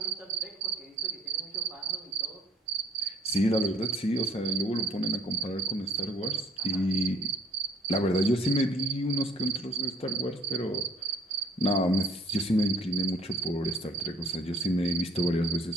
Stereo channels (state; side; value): normal; both; correlation 0.58